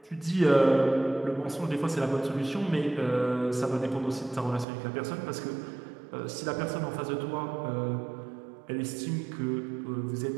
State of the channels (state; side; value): drops out; left; at 4.7 s